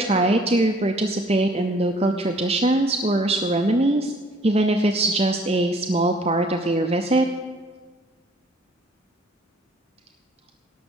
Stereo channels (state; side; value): normal; both; correlation 0.57